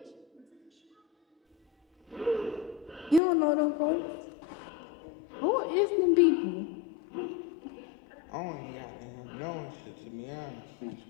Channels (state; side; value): drops out; right; at 3.2 s